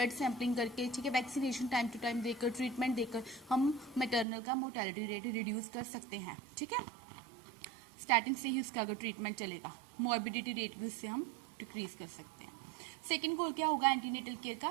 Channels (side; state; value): left; drops out; at 4.2 s